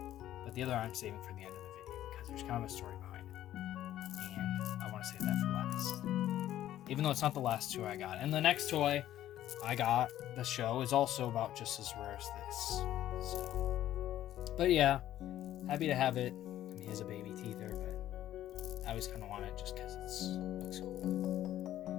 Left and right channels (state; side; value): quieter; right; 12.7 dB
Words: but the other I'm saving for the end of the video because there's kind of a story behind it, and I want to save that for last, even though it's not the last 2 I got. And the next toy I got, the show, is also about just as rare as this, so. But yeah, happy to have it. I mean, he has a baby teether, but I always kind of want it just because it looks